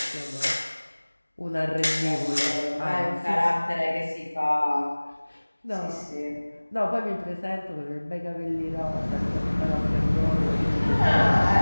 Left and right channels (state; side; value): inverted; both; correlation -1.00